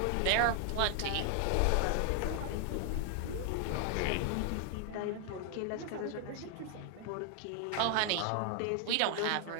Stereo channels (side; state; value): both; different; correlation 0.00